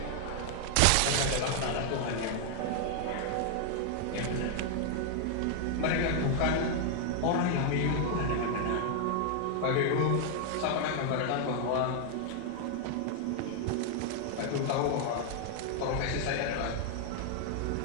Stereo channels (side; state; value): both; different; correlation 0.00